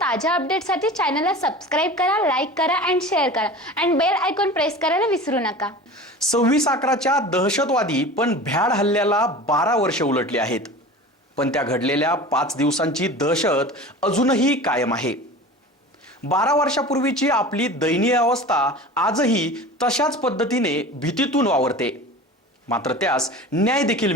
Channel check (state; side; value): normal; both; correlation 0.36